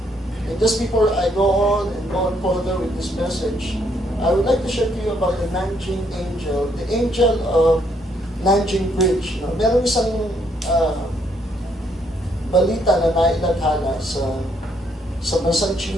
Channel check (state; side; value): normal; both; correlation 0.71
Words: And just before I go on further with this message, I would like to share to you about the Nanjing angel, the angel of Nanjing Bridge. Meron isang balita na nailaghala sa bansang